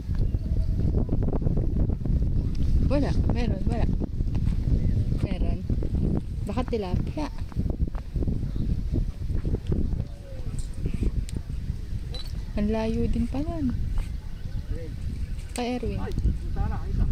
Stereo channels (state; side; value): identical; both; correlation 1.00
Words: Wala. Meron. Baka tilapia. Ang layo din pala. Kay Erwin.